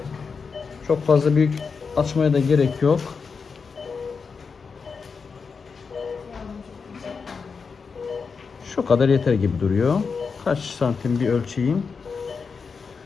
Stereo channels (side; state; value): right; quieter; 5.3 dB